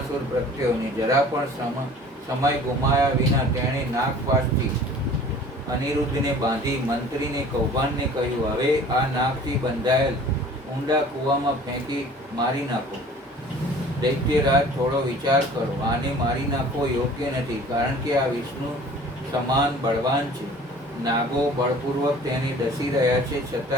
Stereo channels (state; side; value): normal; both; correlation 0.47